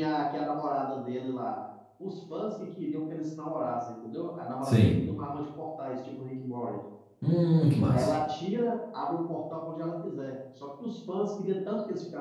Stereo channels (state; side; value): identical; both; correlation 1.00